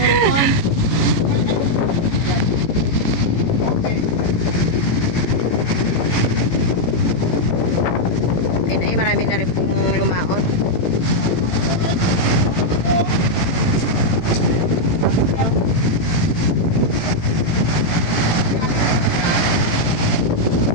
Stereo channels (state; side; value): late; right; 18 ms